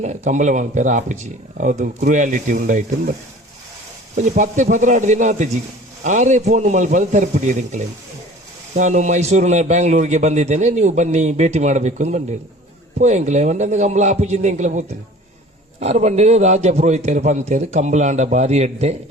ಕಂಬಳ ಮಲ್ಪೇರ ಆಪುಜಿ ಅದು ಕ್ರೂಯಾಲಿಟಿ ಉಂಡಾಯ್ತು ಬಟ್ ಒಂಜಿ 10-16 ದಿನ ಆತಜಿ ಆರೇ ಫೋನ್ ಮಲ್ಪದು ತರಪಿಡಿಯದು ಎಂಕಲೆ ನಾನು ಮೈಸೂರಿನ ಬ್ಯಾಂಗ್ಳೂರಿಗೆ ಬಂದಿದ್ದೇನೆ ನೀವು ಬನ್ನಿ ಭೇಟಿ ಮಾಡಬೇಕು ಅಂತ ಬಂದಿರು ಪೋಯಂಕಲೆ ಒಂದೊಂದು ಕಂಬಳ ಆಪುಜಿಂದ ಎಂಕಲೆ ಹೋಗ್ತೇನೆ ಆರು ಬಂದಿರು ರಾಜ ಪುರೋಹಿತರು ಪಂತೇರು ಕಂಬಳಾಂಡ ಬಾರಿ ಎಡ್ಡೆ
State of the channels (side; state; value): both; normal; correlation 0.45